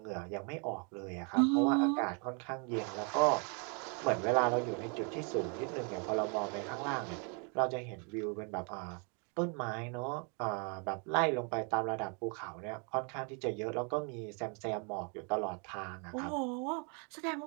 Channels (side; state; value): left; quieter; 36.5 dB